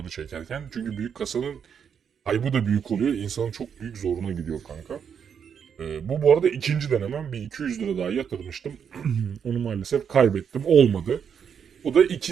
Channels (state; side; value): quieter; left; 7.4 dB